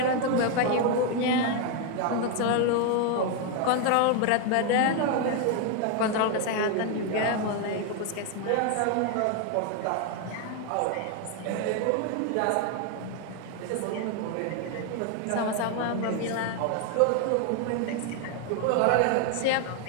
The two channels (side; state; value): both; different; correlation 0.01